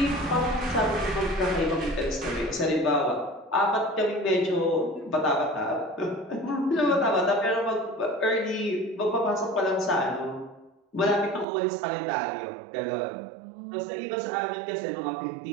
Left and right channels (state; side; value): drops out; left; at 11.5 s